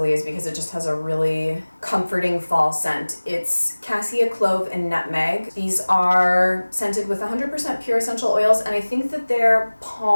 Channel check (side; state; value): both; inverted; correlation -1.00